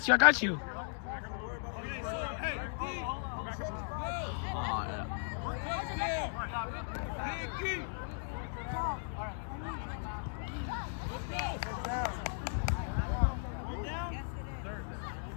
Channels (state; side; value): silent; right; digital silence